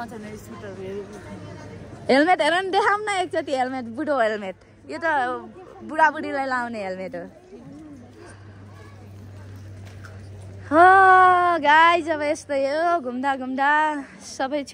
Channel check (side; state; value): both; identical; correlation 1.00